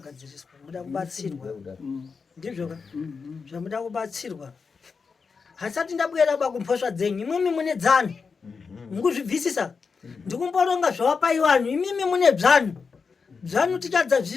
muda kubatsirwa ndizvoka zvamuda kubatsirwa hasati ndabwera bakumphosva dzenyu imwemi mune dzano mukuzvibvisisa ndikumboronga zvawapaiwanhu imimi mune bzanu bzanu tichadza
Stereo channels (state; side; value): quieter; right; 5.2 dB